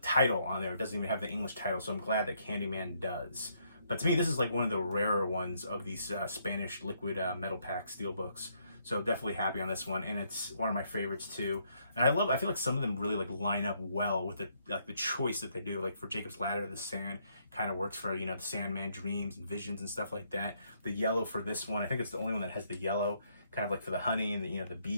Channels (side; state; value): both; inverted; correlation -0.72